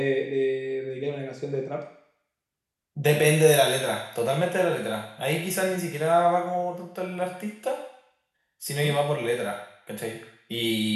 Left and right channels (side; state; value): both; identical; correlation 1.00